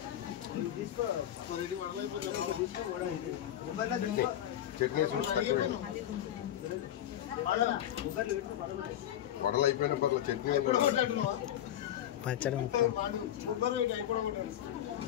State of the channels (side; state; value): right; quieter; 11.5 dB